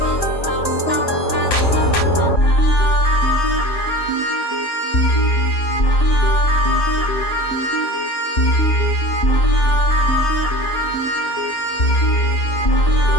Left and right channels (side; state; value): right; late; 3.0 ms